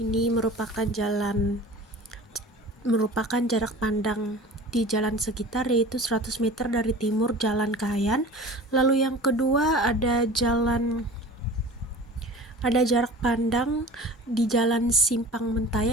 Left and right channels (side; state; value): both; normal; correlation 0.40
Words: merupakan jarak pandang di jalan sekitar, yaitu 100 meter dari timur Jalan Kahayan. Lalu yang kedua ada jarak pandang di Jalan Simpang